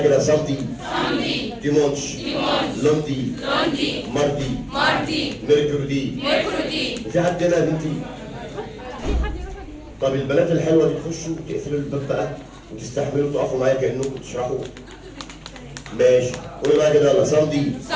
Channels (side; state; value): both; identical; correlation 1.00